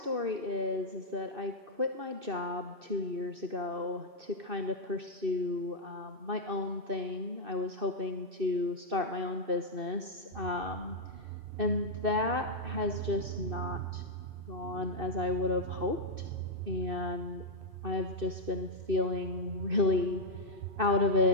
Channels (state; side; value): late; left; 2.6 ms